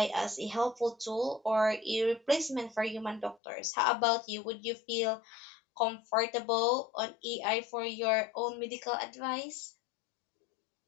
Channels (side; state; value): right; drops out; at 3.4 s